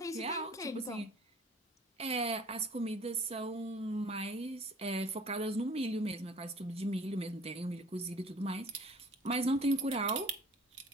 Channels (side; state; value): both; normal; correlation 0.49